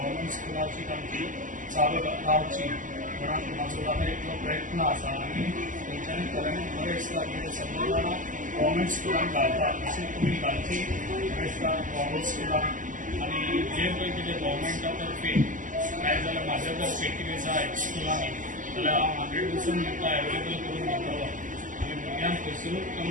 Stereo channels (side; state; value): left; late; 0.38 ms